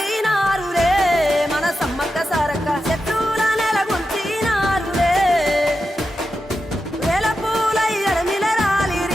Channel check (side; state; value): both; normal; correlation 0.89